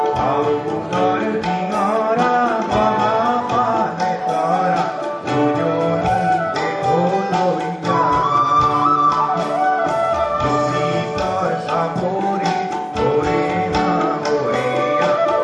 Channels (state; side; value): identical; both; correlation 1.00